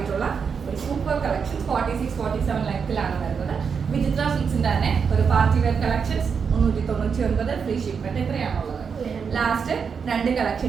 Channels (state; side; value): quieter; left; 6.2 dB